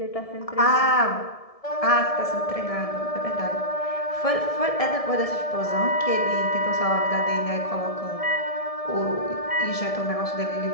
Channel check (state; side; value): late; right; 1.7 ms